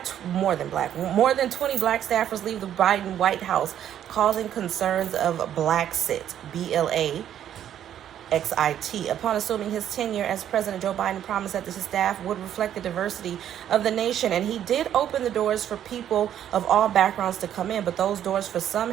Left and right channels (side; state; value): left; quieter; 10.5 dB